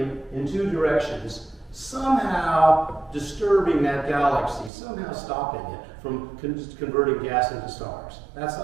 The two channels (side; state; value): left; drops out; at 4.7 s